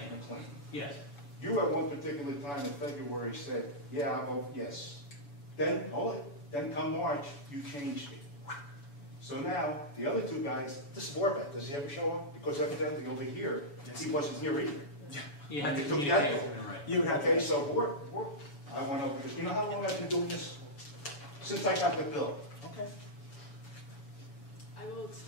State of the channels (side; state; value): right; late; 7.0 ms